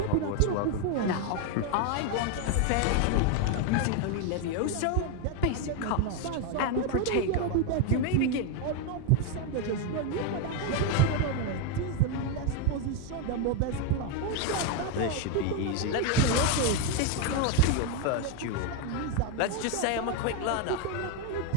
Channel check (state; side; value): different; both; correlation 0.01